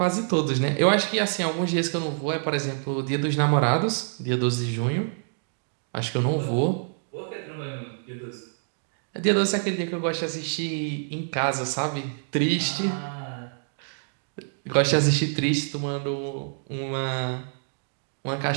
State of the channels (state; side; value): silent; left; digital silence